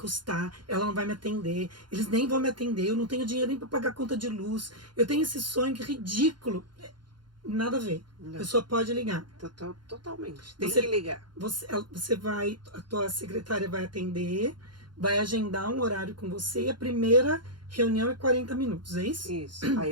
Ela não vai me atender. Eles nem vão me atender. Eu não tenho dinheiro nem para pagar a conta de luz. Eu tenho esse sonho que é ridículo. Nada a ver. Não. A pessoa pode ligar. Totalmente. Tem Você- que ligar. Você vai, a tua secretária vai atender, vai agendar um horário com você e a primeira reunião é 40 minutos, é isso? Isso.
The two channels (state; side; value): late; left; 0.71 ms